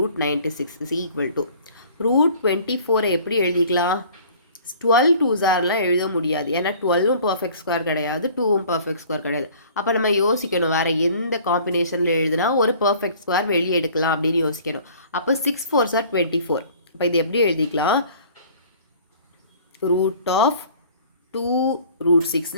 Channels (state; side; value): inverted; both; correlation -0.51